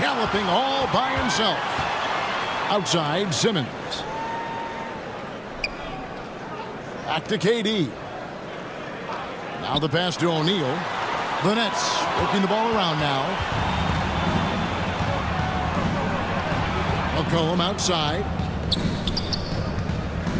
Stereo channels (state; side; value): identical; both; correlation 1.00